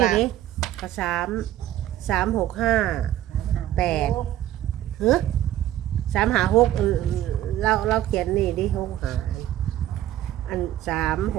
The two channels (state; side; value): quieter; left; 13.0 dB